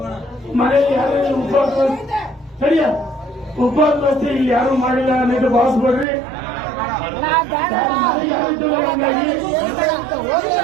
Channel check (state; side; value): drops out; left; at 6.1 s